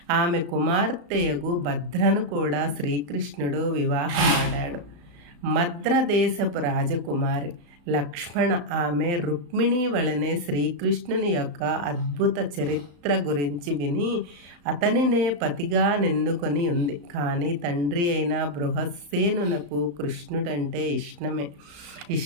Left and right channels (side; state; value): left; late; 35 ms